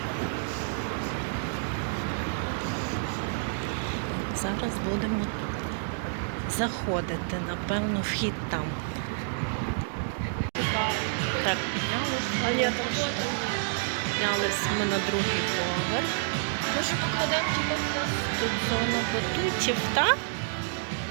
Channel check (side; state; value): left; silent; digital silence